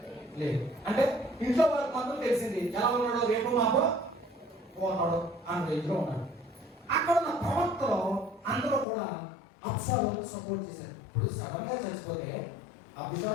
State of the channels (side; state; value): right; drops out; at 8.8 s